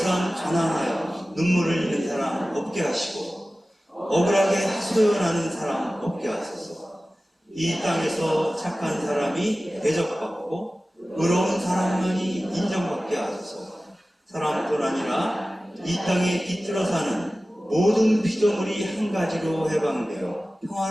가난하여 눈물을 흘리는 사람 없게 하시고 억울하게 하소연하는 사람 없게 하소서. 이 땅에서 착한 사람이 대접받고 의로운 사람만이 인정받게 하소서. 사람뿐 아니라 이 땅에 깃들어 사는 모든 피조물이 한 가지로 해방되어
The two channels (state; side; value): normal; both; correlation 0.96